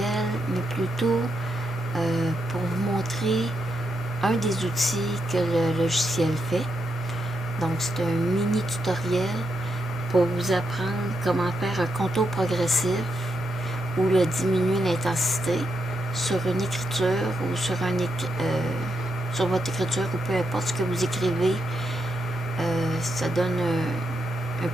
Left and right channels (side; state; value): both; normal; correlation 0.82